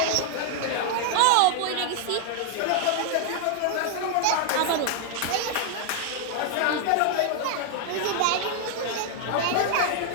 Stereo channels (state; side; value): different; both; correlation 0.00